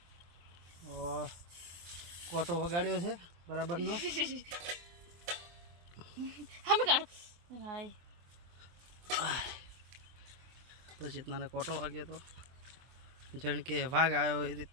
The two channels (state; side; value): late; left; 24 ms